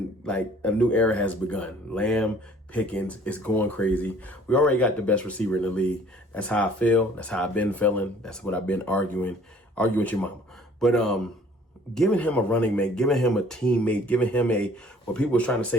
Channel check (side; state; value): both; normal; correlation 0.54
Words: has begun. Lamb, Pickens is going crazy. We already got the best receiver in the league. That's how I feel. That's how I've been feeling. That's what I've been arguing with your mama. But giving him a running mate, giving him a teammate, giving him what people was trying to